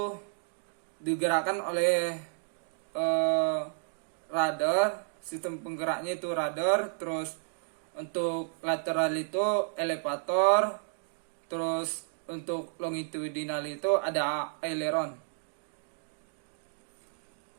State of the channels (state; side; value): silent; left; digital silence